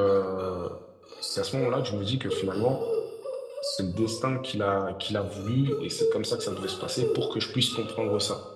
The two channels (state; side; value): identical; both; correlation 1.00